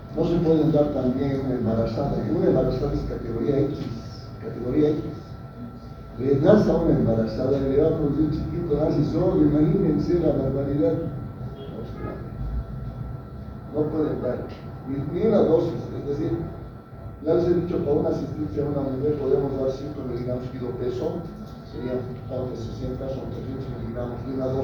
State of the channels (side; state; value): both; identical; correlation 1.00